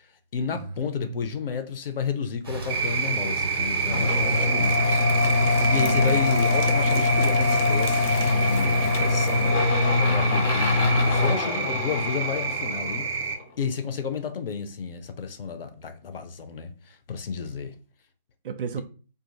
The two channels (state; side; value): inverted; both; correlation -0.63